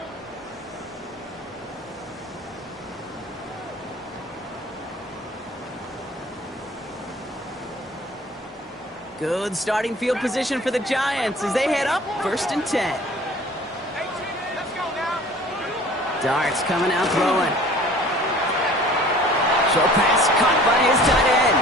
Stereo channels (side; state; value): both; normal; correlation 0.48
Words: Good starting field position for the Giants as they head up 1st and 10. Darts coming out throwing. Short pass caught by his tight